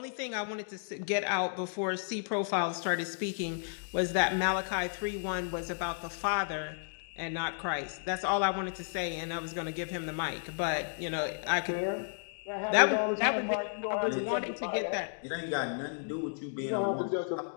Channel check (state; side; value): silent; right; digital silence